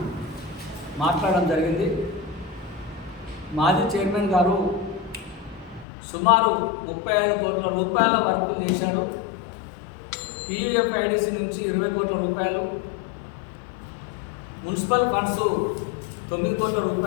మాట్లాడడం జరిగింది. మాజీ చైర్మన్ గారు సుమారు 35 కోట్ల రూపాయల వర్కులు చేశారు. PUFIDC నుంచి 20 కోట్ల రూపాయలు, మున్సిపల్ ఫండ్స్ 9 కోట్ల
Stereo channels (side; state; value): right; drops out; at 5.9 s